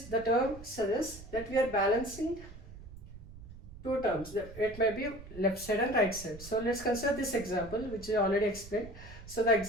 the term suggests that we are balancing two terms. It may be left side and right side. So let's consider this example, which I already explained. So the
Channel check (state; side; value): noise; right; rumble, 15 dB below the sound